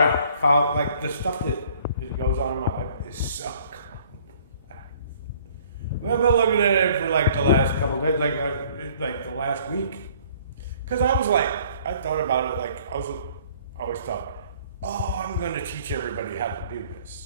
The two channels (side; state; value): both; inverted; correlation -0.57